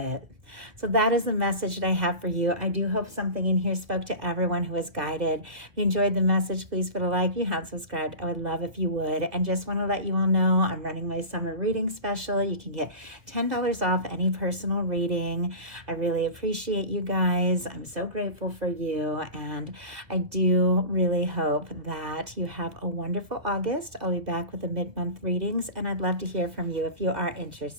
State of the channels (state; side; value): late; left; 1.8 ms